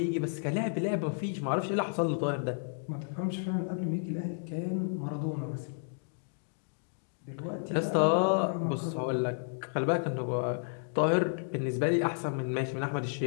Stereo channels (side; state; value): right; silent; digital silence